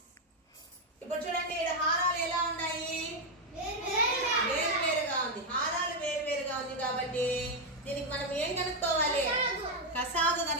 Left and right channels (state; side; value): normal; both; correlation 0.03